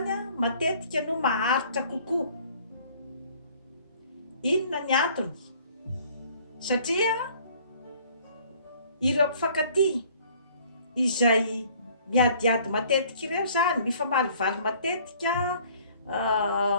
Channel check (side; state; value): both; inverted; correlation -0.56